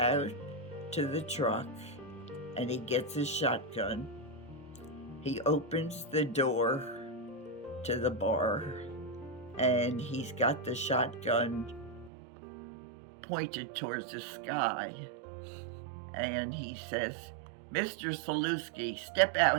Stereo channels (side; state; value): left; drops out; at 12.1 s